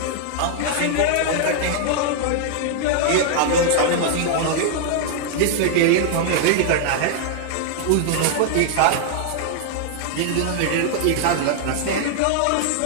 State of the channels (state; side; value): different; both; correlation -0.01